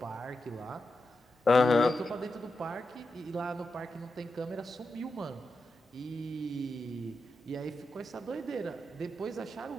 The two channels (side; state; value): both; normal; correlation 0.88